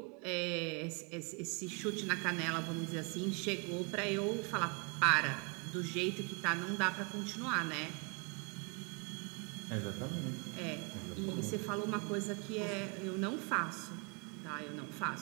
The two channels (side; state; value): left; quieter; 34.0 dB